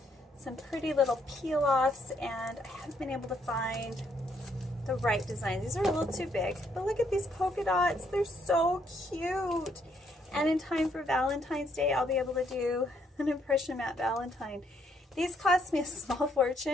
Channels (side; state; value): both; normal; correlation 0.71